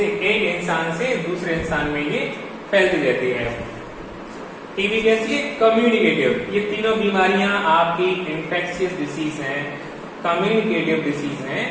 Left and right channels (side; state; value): both; identical; correlation 1.00